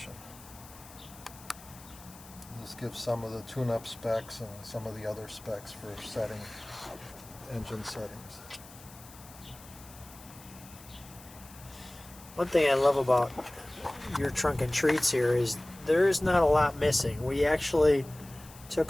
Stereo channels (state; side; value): noise; left; hiss, 20 dB below the sound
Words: This gives some of the tune-up specs and some of the other specs for setting engine settings. One thing I love about your trunk and treats here is there is not a lot missing. We actually